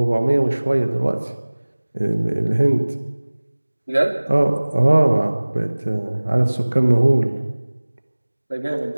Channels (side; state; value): both; inverted; correlation -1.00